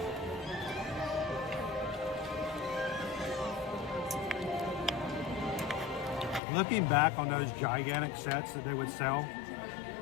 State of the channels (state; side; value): drops out; right; at 6.4 s